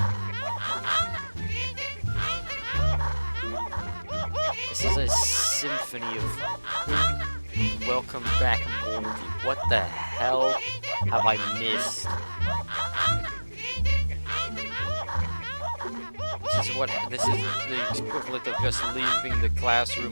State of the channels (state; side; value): inverted; both; correlation -1.00